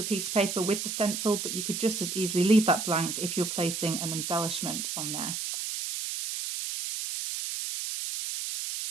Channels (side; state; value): right; noise; hiss, 4 dB below the sound